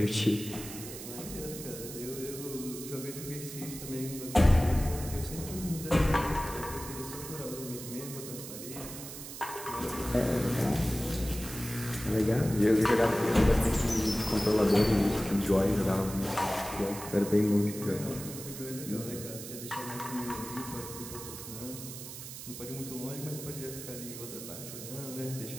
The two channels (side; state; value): right; noise; hiss, 11 dB below the sound